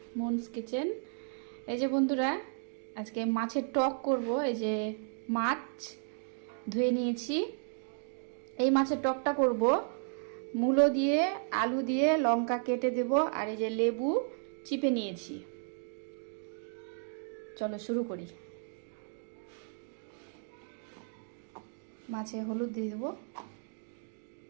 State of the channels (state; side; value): silent; left; 55 dB below the other